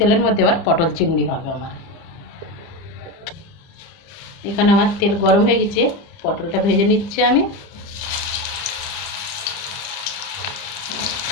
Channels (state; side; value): late; right; 30 ms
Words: মধ্যে আবার পটল চিংড়ি হবে আমার। এখানে আমার তেল গরম হয়ে গেছে, পটলটা ভেজে নিচ্ছি আমি।